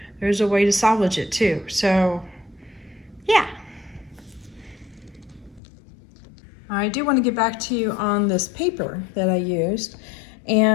there's a way to salvage it too. So, yeah. I do want to get back to you on this paper that I used.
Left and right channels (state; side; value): drops out; right; at 5.6 s